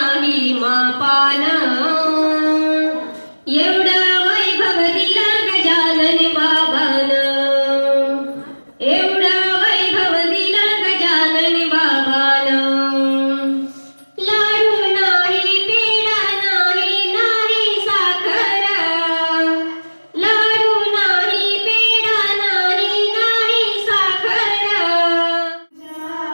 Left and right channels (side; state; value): both; inverted; correlation -1.00